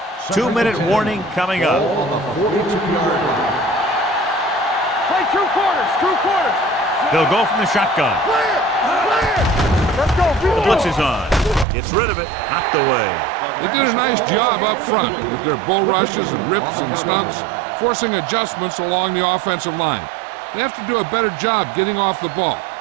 Two-minute warning coming up. Play 2 quarters. 2 quarters. They'll go from the shotgun. Clear. Let's go. The blitz is on. Gets rid of it. Knocked away. They did a nice job up front with their bull rushes and rips and stunts, forcing adjustments along the offensive line. They have to do a better job getting off the ball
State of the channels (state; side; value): drops out; left; at 11.7 s